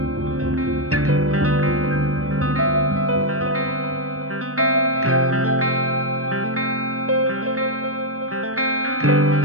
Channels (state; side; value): late; left; 0.65 ms